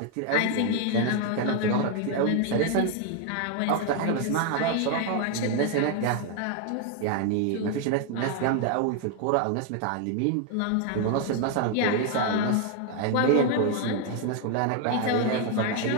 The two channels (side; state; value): both; different; correlation 0.01